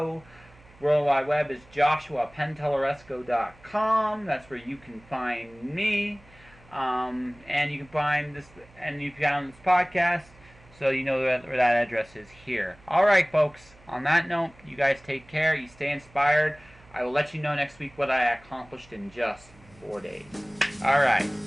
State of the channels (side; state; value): right; noise; hum, 26 dB below the sound